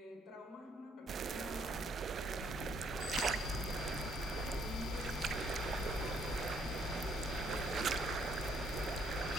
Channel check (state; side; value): normal; both; correlation 0.68